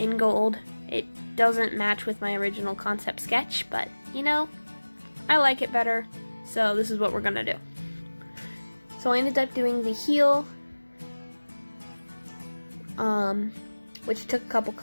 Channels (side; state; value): both; inverted; correlation -1.00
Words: gold. It doesn't match with my original concept sketch, but you know, I like it better, so this is what we're gonna do. So I ended up doing the heel, which took a couple